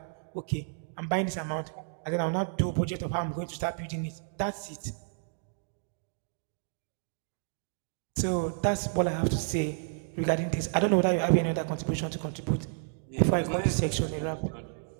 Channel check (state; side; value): silent; left; digital silence